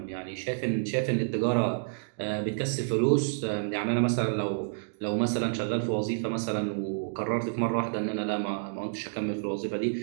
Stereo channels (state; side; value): silent; left; digital silence